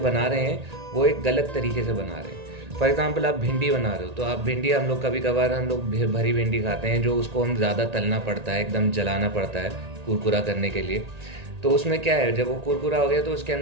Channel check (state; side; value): late; left; 1.8 ms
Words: रहे हैं वो एक गलत तरीके से बना रहे हैं। फॉर एग्जांपल आप भिंडी बना रहे हो, तो आप भिंडी हम लोग कभी कभार भरी भिंडी खाते हैं, जो उसको हम ज़्यादा तलना पड़ता है, एकदम जलाना पड़ता है कुरकुरा करने के लिए। तो उसमें क्या है, जब वो कुरकुरा हो गया तो उसके